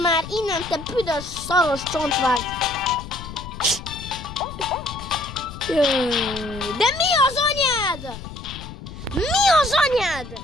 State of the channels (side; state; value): left; noise; rumble, 12 dB below the sound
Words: már innen, te büdös, szaros csontvágy. De mi az anyád?